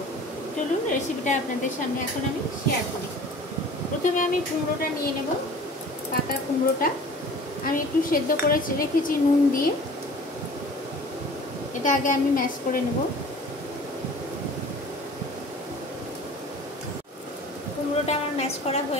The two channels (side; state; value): both; normal; correlation 0.45